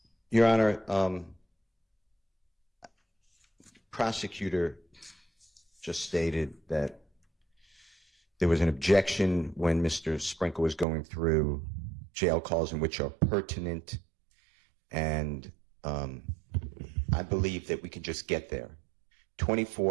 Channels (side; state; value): left; drops out; at 10.9 s